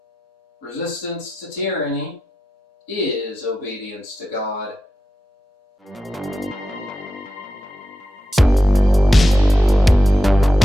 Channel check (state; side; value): normal; both; correlation 0.90